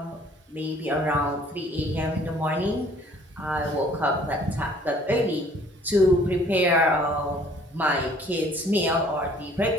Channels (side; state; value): both; normal; correlation 0.56